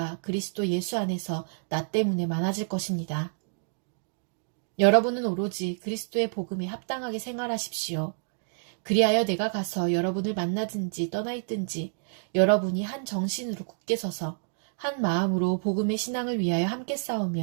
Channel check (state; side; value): silent; left; digital silence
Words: 그리스도 예수 안에서 나 때문에 많아질 것입니다. 여러분은 오로지 그리스도의 복음에 합당하게 생활하십시오. 그리하여 내가 가서 여러분을 만나든지 떠나 있든지 여러분이 한 정신으로 굳게 서서 한 마음으로 복음의 신앙을 위하여 함께